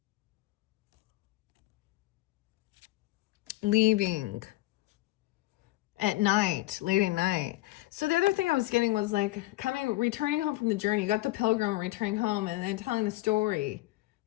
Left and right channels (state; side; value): quieter; right; 18.5 dB